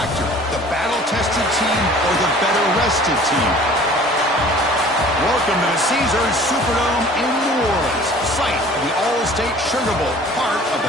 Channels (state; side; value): normal; both; correlation 0.48